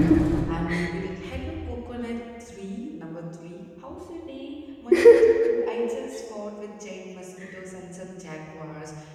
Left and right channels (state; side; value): identical; both; correlation 1.00